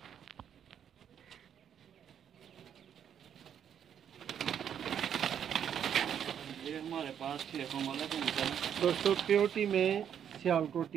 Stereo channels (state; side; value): quieter; left; 8.8 dB